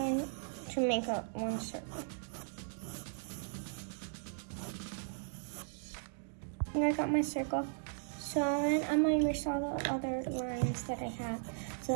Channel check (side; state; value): left; silent; digital silence